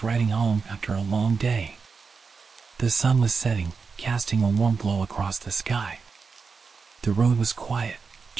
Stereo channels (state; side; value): quieter; left; 5.0 dB